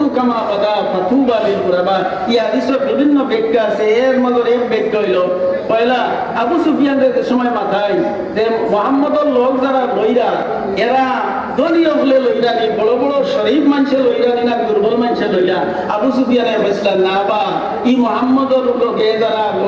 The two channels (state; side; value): identical; both; correlation 1.00